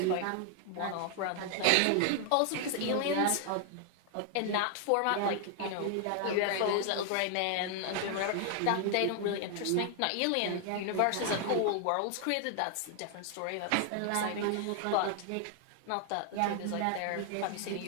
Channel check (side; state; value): both; different; correlation 0.00